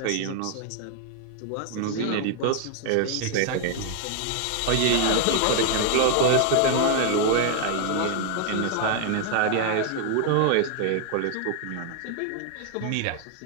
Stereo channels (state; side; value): different; both; correlation 0.00